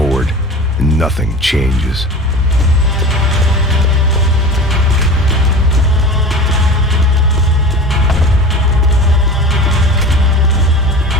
and nothing changes.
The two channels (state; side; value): normal; both; correlation 0.35